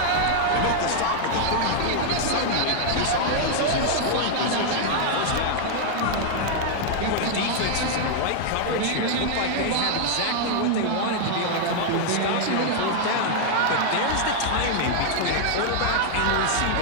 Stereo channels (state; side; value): different; both; correlation 0.00